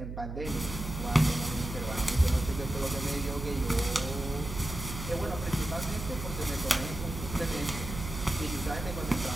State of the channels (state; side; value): noise; right; hum, 7 dB below the sound